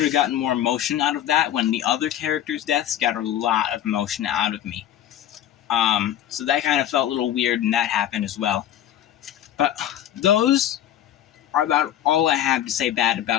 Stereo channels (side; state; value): right; quieter; 11.4 dB